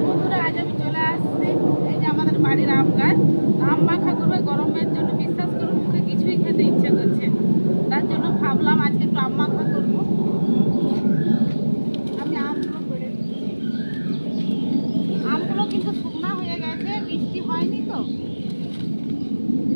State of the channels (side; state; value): both; inverted; correlation -1.00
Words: বন্ধুরা, আজ আমি চলে আসছি এই যে আমাদের বাড়ির আম গাছ। আম মাখা করবে গরমের জন্য। বিশ্বাস করুন মুখে কিছুই খেতে ইচ্ছে করছে, তার জন্য ভাবলাম আজকে একটু আম মাখা করবো। আমি আমগুলো পেড়ে দিচ্ছি। আমগুলো কিন্তু শুকনা হয়ে গেছে, বৃষ্টি হয়নি তো।